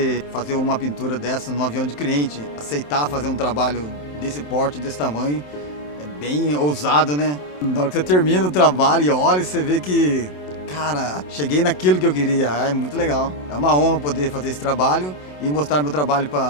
fazer uma pintura dessa no avião de cliente. Aceitar fazer um trabalho desse porte, desse tamanho, é bem ousado, né? Na hora que você termina o trabalho e olha, você vê que, cara, cheguei naquilo que eu queria. É muito legal. É uma honra poder fazer esse trabalho e mostrar meu trabalho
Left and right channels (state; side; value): late; right; 27 ms